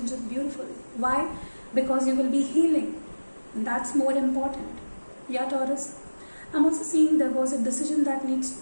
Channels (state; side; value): inverted; both; correlation -1.00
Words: beautiful. Why? Because you will be healing. And that's more important. Yeah, Taurus. I'm also seeing there is a decision that